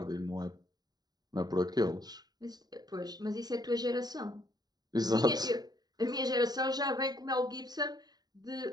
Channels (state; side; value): late; left; 0.19 ms